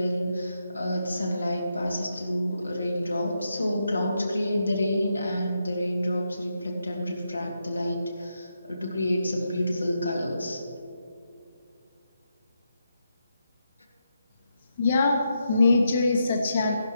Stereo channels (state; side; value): inverted; both; correlation -0.83